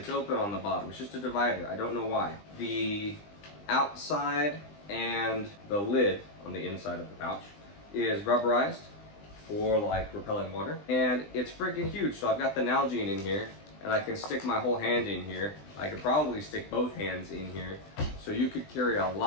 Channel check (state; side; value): late; right; 20 ms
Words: open on the bottom. It's just a divider, I don't know why. The outside and the lid on the inside of the pouch is rubberized for like repelling water. And it's freaking huge, so I've got the Nalgene in here and I can stick my whole hand in here. I could probably stick both hands in here. So you could carry a